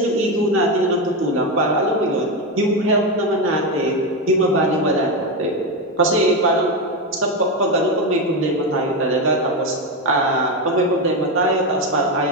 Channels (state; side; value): normal; both; correlation 0.12